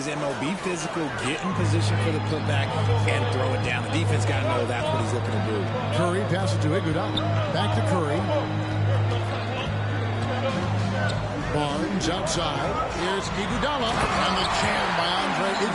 MO. Be physical, get in position for the putback, and throw it down. The defense got to know that's what he's looking to do. Curry passes to Iguodala. Back to Curry. Barnes outside. Here's Iguodala. And the jam by Andre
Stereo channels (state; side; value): identical; both; correlation 1.00